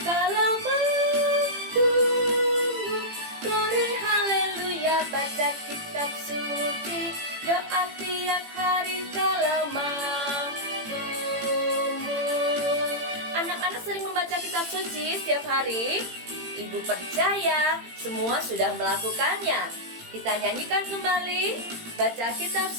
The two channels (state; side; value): late; left; 18 ms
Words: mau tumbuh. Glory haleluya, baca kitab suci, doa tiap hari kalau mau tumbuh. Anak-anak sering membaca kitab suci setiap hari? Ibu percaya semua sudah melakukannya. Kita nyanyikan kembali baca kitab